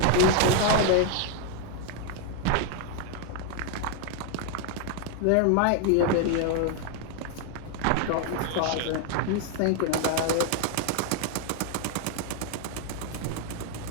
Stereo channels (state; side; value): different; both; correlation 0.01